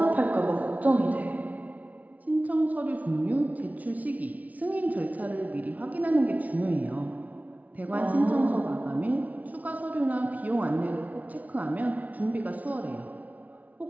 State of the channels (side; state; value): left; late; 0.072 ms